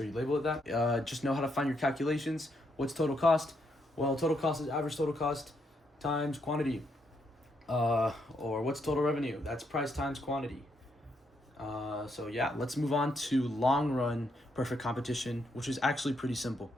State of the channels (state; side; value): normal; both; correlation 0.77